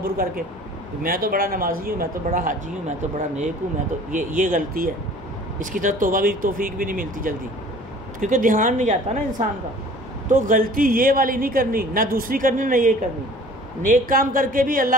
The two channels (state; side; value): normal; both; correlation 0.48